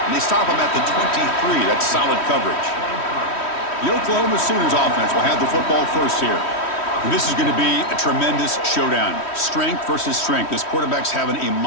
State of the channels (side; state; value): right; late; 3.1 ms